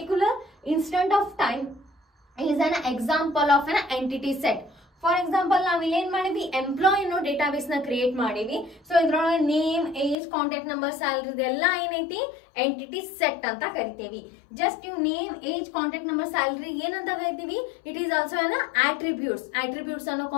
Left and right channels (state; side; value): drops out; right; at 10.2 s